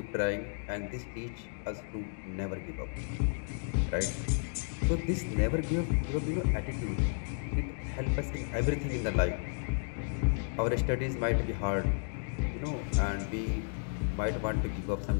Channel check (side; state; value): right; silent; digital silence